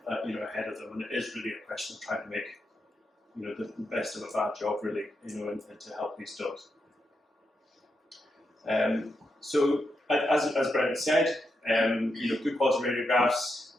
ahead of them, and it is really a question of trying to make the best of a bad job, really, and to help these dogs. So as Brent said, good quality radiographs,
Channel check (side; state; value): both; normal; correlation 0.84